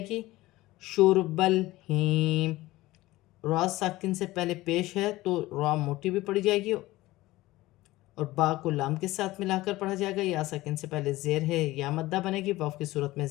گی، شرب الہیم، را ساکن سے پہلے پیش ہے تو را موٹی بھی پڑھی جائے گی اور با کو لام کے ساتھ ملا کر پڑھا جائے گا، یا ساکن سے پہلے زیر ہے، یا مدہ بنے گی، واف کی صورت میں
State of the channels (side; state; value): right; quieter; 18.2 dB